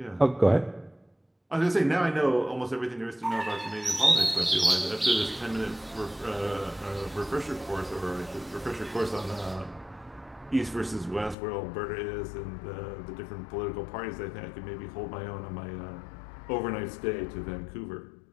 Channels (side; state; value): right; drops out; at 11.4 s